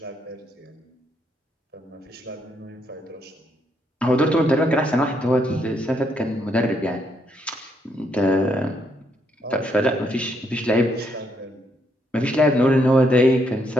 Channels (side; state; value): both; normal; correlation 0.75